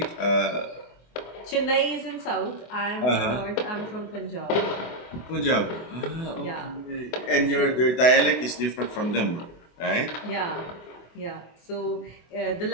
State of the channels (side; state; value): right; late; 24 ms